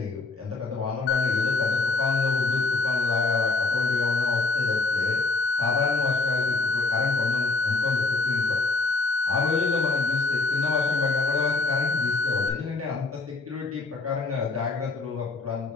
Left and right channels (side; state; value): right; quieter; 3.6 dB